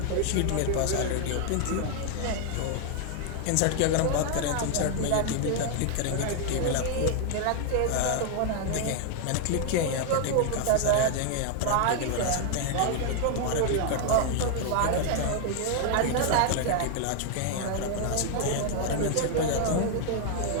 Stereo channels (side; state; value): both; different; correlation 0.00